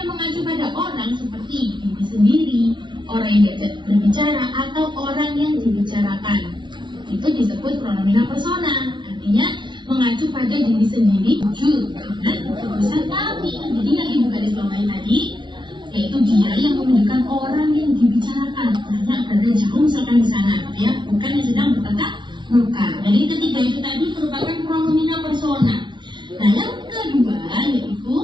mengacu pada orang seperti diri sendiri, orang yang diajak berbicara, atau orang yang dibicarakan. Itu disebut pronomina persona, artinya mengacu pada diri sendiri, tuju, dan urusan kami. Jadi yang ibu garis bawahi tadi, yaitu dia yang menunjukkan orang yang dibicarakan. Artinya berada jauh misalkan di sana, ya, bukan yang sedang bertatap muka. Jadi ketiga itu tadi merupakan pronomina persona. Nah, yang kedua yaitu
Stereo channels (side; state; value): left; late; 0.23 ms